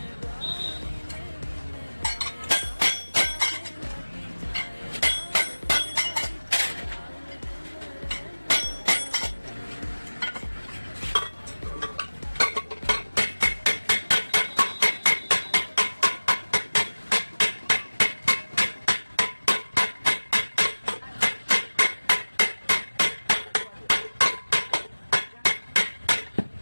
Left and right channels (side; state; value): both; inverted; correlation -1.00